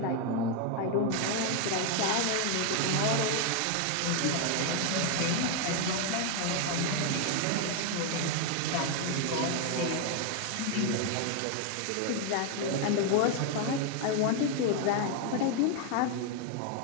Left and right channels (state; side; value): different; both; correlation 0.01